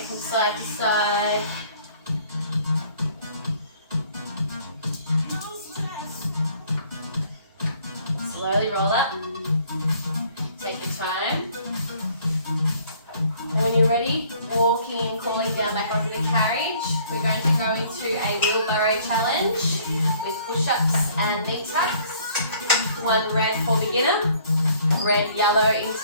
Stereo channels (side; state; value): both; inverted; correlation -0.59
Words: from side to side. Slowly roll up. Take your time. And when you're ready, walking and crawling down back onto the carriage. We're going to go into a wheelbarrow challenge with push-ups and knee tucks. 1 red for beginner, red, yellow,